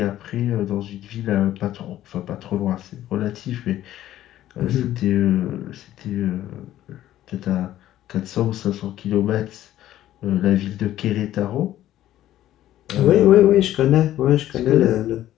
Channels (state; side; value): quieter; right; 13.2 dB